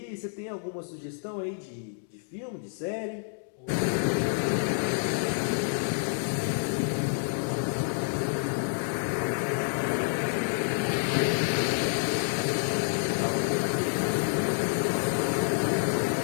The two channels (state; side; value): silent; right; digital silence